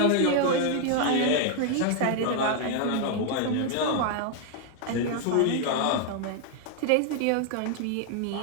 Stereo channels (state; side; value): different; both; correlation 0.00